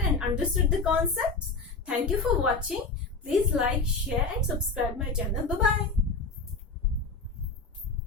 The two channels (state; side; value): quieter; right; 4.0 dB